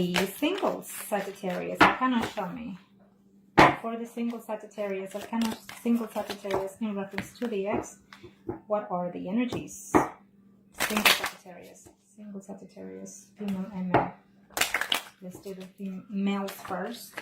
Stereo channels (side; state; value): both; identical; correlation 1.00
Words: singles, Sagittarius. Kind of show me. For the single Sagittarius, single Sagittarius in reference to the ex, what are the energies? Single Sagittarius, female and male. Let's do the males first.